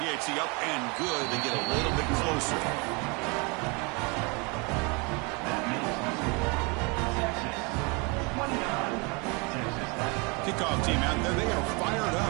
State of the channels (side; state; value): left; quieter; 30.2 dB